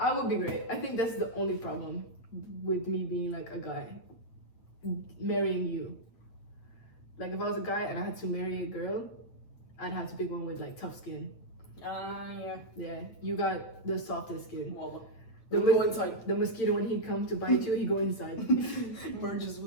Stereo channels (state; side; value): late; right; 9.0 ms